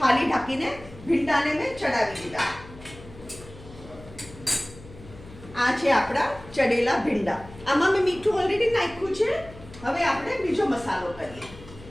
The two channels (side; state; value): left; noise; hum, 19 dB below the sound